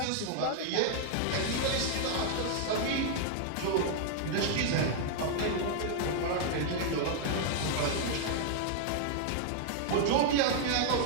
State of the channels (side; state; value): both; different; correlation -0.01